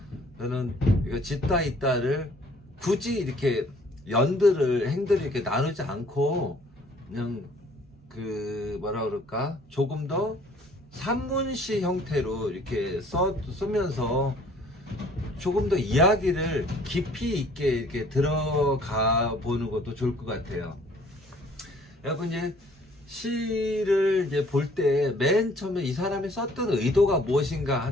저는 이거 짓다 있다를 굳이 이렇게 행들을 이렇게 나누지 않고 그냥 그 뭐라 그럴까, 조금 더 산문시 형태로 이렇게 쓰면서 조금 더 이야기를 깊이 있게 이렇게 들어가 보는 것도 좋을 것 같아요. 여러분, 이제 시를 이제 볼 때 맨 처음에 이 사람이 썼던 의도가 무엇인가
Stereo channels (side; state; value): both; normal; correlation 0.57